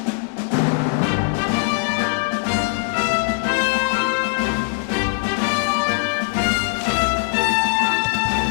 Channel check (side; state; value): right; quieter; 35.1 dB